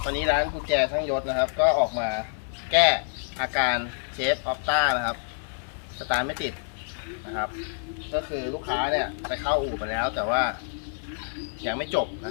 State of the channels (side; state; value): right; silent; digital silence